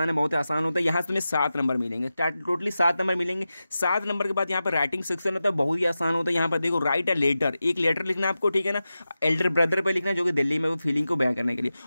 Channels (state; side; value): inverted; both; correlation -0.93